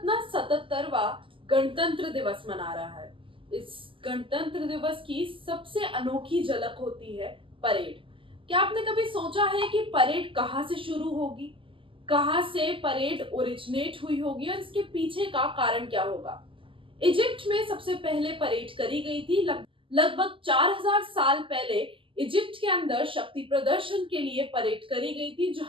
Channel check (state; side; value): late; left; 0.25 ms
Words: 77वां गणतंत्र दिवस मना रहा है। इस गणतंत्र दिवस की सबसे अनोखी झलक होती है परेड। क्या आपने कभी सोचा है कि परेड कहाँ से शुरू होगी, कहाँ से परेड ओरिजिनेट हुई होगी और इसके पीछे का कारण क्या होगा? इजिप्ट में सबसे पहले परेड करी गई थी लगभग 4000 साल पहले। इजिप्ट के अंदर शक्ति प्रदर्शन के लिए परेड करी गई थी,